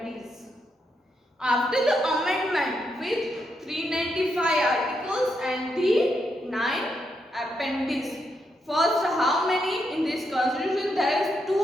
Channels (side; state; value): both; normal; correlation 0.81